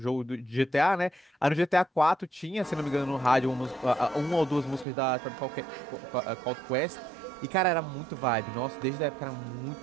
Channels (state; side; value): drops out; left; at 4.9 s